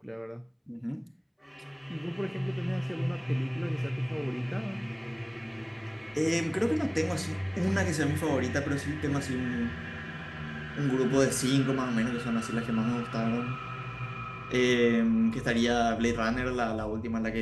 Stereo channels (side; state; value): both; identical; correlation 1.00